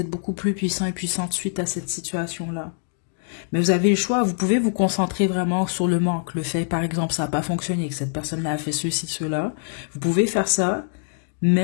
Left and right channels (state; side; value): silent; right; digital silence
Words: beaucoup plus puissant et puissante suite à cette situation-là. Mais vous avez le choix, vous pouvez vous concentrer vraiment sur le manque. Le fait, par exemple, ça n'a pas fonctionné, que cette personne-là a fait ceci, cela. Vous pouvez faire ça,